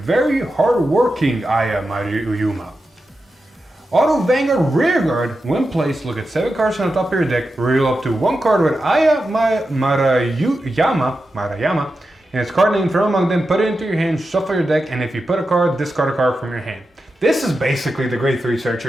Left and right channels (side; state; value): both; normal; correlation 0.90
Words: Very hard-working Aya Maruyama. Auto Vanguard Rearguard, when placed, look at 7 cards on the top of your deck, reveal up to 1 card with Aya Maruyama, and its card name from among them, put it into your hand, shuffle your deck, and if you put a card, discard a card from your hand. This is basically the grade 3